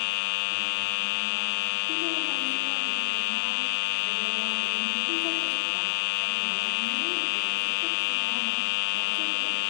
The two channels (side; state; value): right; silent; digital silence